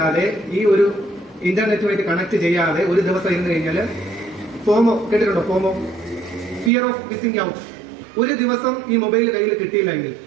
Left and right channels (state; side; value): drops out; left; at 6.7 s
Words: ഈ ഒരു ഇന്റർനെറ്റുമായിട്ട് കണക്ട് ചെയ്യാതെ ഒരു ദിവസം ഇരുന്ന് കഴിഞ്ഞാൽ ഫോമോ കേട്ടിട്ടുണ്ടോ? ഫോമോ, ഫിയർ ഓഫ് മിസ്സിംഗ് ഔട്ട്. ഒരു ദിവസം ഈ മൊബൈൽ കയ്യിൽ കിട്ടിയില്ല എങ്കിൽ,